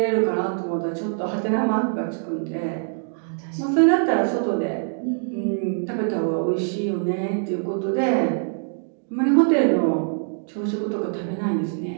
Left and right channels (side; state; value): left; silent; digital silence